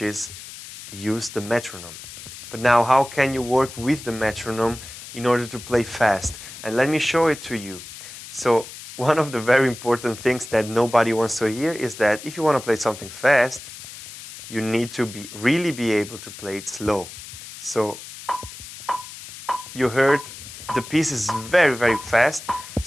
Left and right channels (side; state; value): left; noise; hiss, 14 dB below the sound